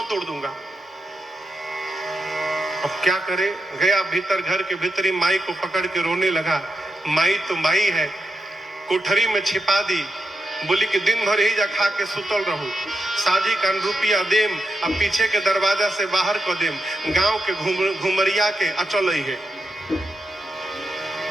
तोड़ दूंगा। अब क्या करे? गया भीतर, घर के भीतरी माई को पकड़ के रोने लगा। माई तो माई है, कोठरी में छिपा दी, बोली कि दिन भर ही जा खा के सुतल रहूं, साजी का रुपया देम, अब पीछे के दरवाजा से बाहर को देम, गांव के घुमरिया के अचल ही है।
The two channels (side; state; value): both; normal; correlation 0.86